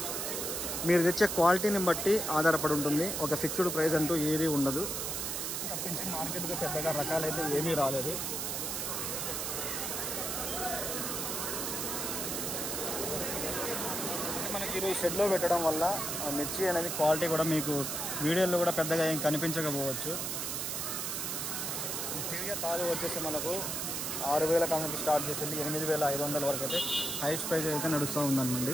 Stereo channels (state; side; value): noise; right; hiss, 2 dB below the sound